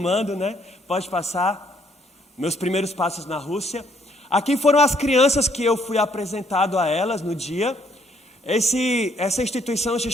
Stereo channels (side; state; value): both; normal; correlation 0.68